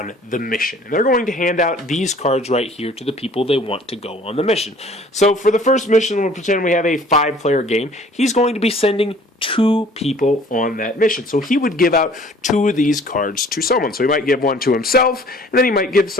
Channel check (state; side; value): normal; both; correlation 0.52